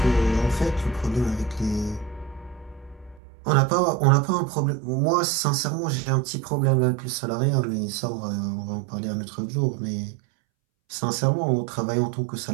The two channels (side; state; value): left; drops out; at 3.2 s